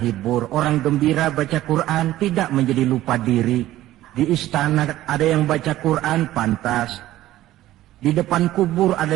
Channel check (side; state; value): left; quieter; 14.8 dB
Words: Orang gembira baca Quran, tidak menjadi lupa diri. Di istana ada yang baca Quran, pantas. Di depan kubur ada